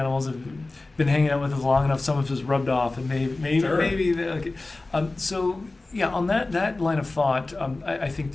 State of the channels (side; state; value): right; quieter; 3.2 dB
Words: have been hanging out with us long enough. Some of us rubbed off, and maybe. On that line of thought, I think